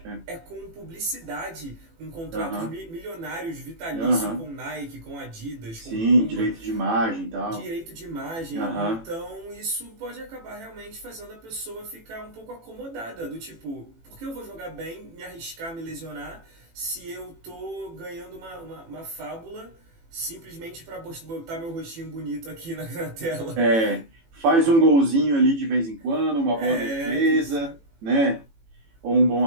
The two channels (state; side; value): late; left; 18 ms